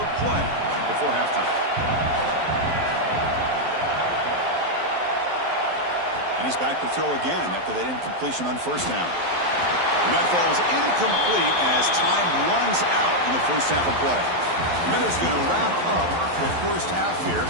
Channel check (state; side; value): late; left; 11 ms